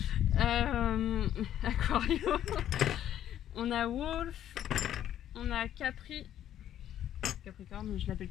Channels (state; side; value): quieter; right; 11.1 dB